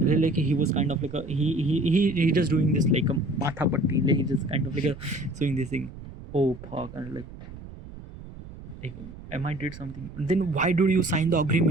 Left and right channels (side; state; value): right; noise; rumble, 15 dB below the sound